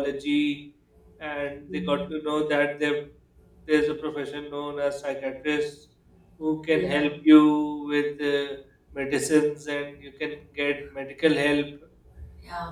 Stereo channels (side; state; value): both; identical; correlation 1.00